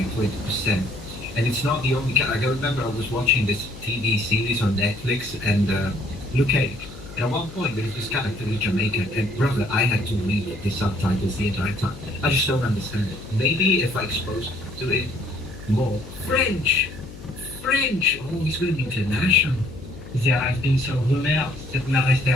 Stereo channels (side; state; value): left; noise; hum, 16 dB below the sound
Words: 20%. And it's not the only, I remember I was watching this TV series on Netflix and Luke Cage. And at one point there was this character in Jamaican, and brother, I had to read the subtitles the entire time. I just don't understand it. Maybe if I exposed to it more. French! Oh, he's going international. There has been some rumors that my